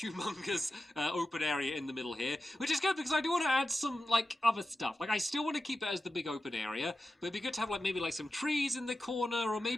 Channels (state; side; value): normal; both; correlation 0.92